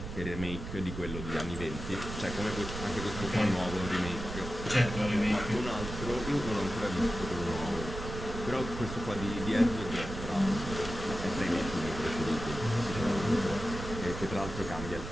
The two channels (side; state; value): right; noise; rumble, 8 dB below the sound